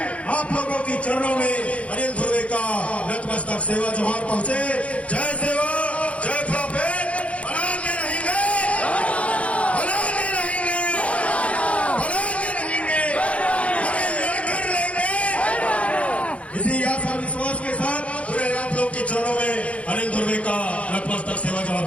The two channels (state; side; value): late; right; 0.063 ms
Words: आप लोगों की चरणों में अनिल ध्रुवे का नतमस्तक सेवा जोहार पहुंचे। जय सेवा, जय प्रोफेट, बनाते रहेंगे, बनाते रहेंगे, बनाते रहेंगे, हमें लड़कर लेंगे। इसी आस और विश्वास के साथ पूरे आप लोग के चरणों में अनिल ध्रुवे का नतमस्तक सेवा जोहार